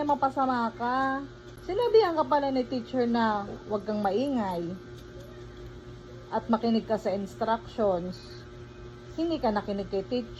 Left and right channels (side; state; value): both; identical; correlation 1.00